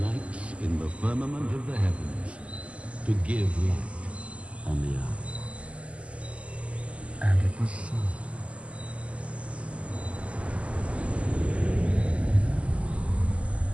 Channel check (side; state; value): left; late; 0.059 ms